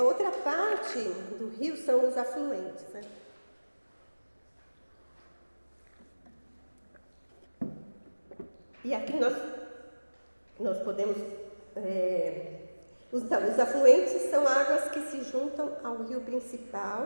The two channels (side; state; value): both; inverted; correlation -1.00